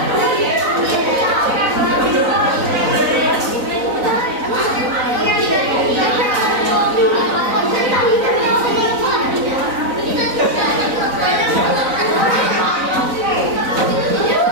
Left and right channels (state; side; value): late; left; 4.0 ms